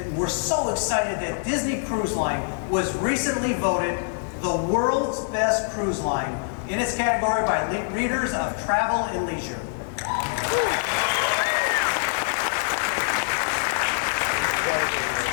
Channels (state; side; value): silent; right; digital silence